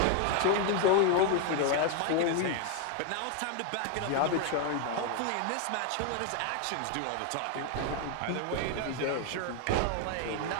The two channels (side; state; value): both; different; correlation 0.01